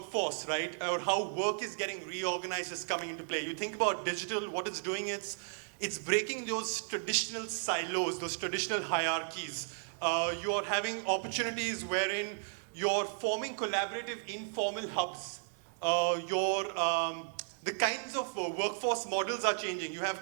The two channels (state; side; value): silent; left; 55 dB below the other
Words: right, or how work is getting reorganized is coming into play. You think about digital, what it's doing is, it's breaking those traditional silos, those traditional hierarchies. You're having opportunities wherein you're forming collaborative informal hubs. The kinds of workforce models are changing. You have